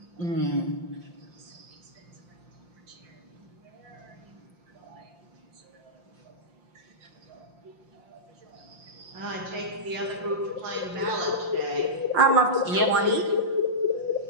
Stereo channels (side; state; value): left; late; 5.7 ms